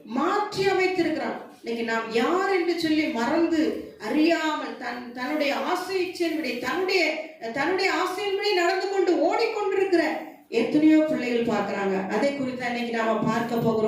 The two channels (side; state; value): both; identical; correlation 1.00